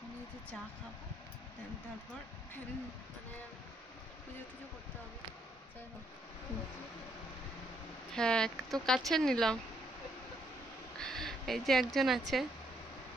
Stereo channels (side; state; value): both; normal; correlation 0.73